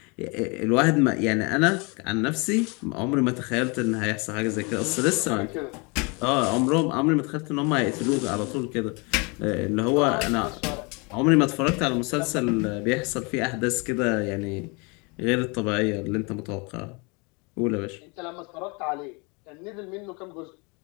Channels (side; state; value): right; quieter; 30.5 dB